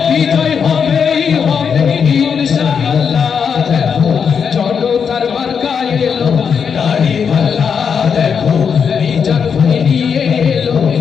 ইনশাআল্লাহ। দেখো জনতার মার্কা এলো দাড়ি পাল্লা, দেখো মিজান ভাই নিয়ে এলো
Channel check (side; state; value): right; quieter; 6.7 dB